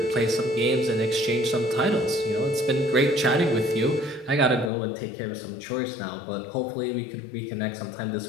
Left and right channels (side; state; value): right; drops out; at 4.7 s